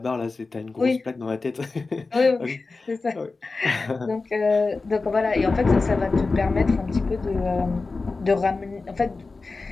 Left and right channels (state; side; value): quieter; right; 3.9 dB